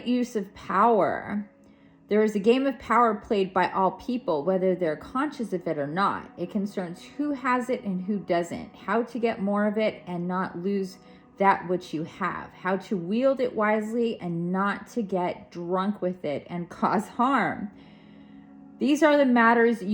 use of power. There is a game of power played by all people, whether they're conscious of it or not. It concerns who has it and who doesn't, how to get more of it and not lose that which you have, how to wield it wisely and not to get drunk with it and cause harm. These are the matters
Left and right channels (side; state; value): both; identical; correlation 1.00